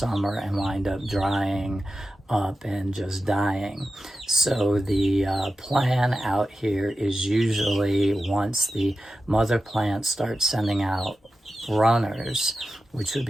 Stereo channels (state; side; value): normal; both; correlation 0.92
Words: and wind up drying up and just dying. So the plan out here is usually once the mother plant starts sending out runners, which would